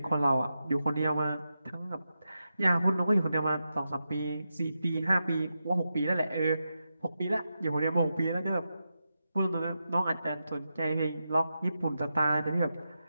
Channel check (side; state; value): both; inverted; correlation -0.88